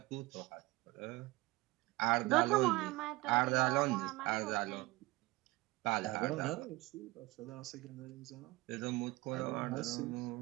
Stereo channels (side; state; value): left; quieter; 21.3 dB